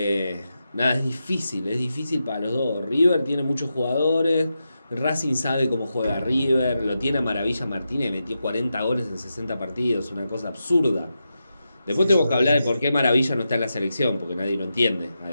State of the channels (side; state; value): both; inverted; correlation -0.88